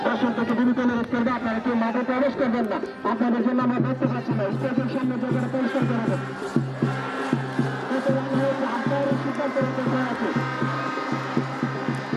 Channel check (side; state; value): both; identical; correlation 1.00